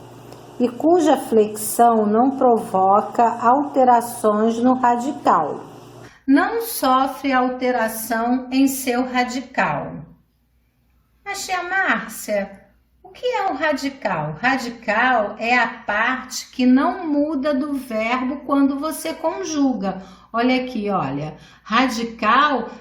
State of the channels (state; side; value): identical; both; correlation 1.00